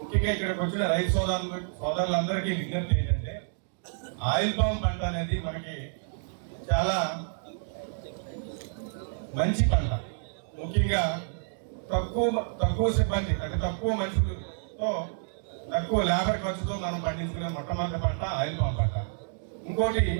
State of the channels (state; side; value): silent; left; digital silence